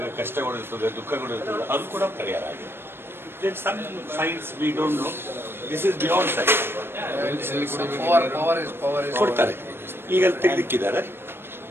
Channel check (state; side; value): late; left; 0.11 ms